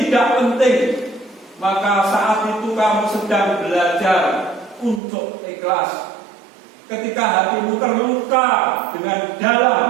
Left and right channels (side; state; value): left; drops out; at 5.0 s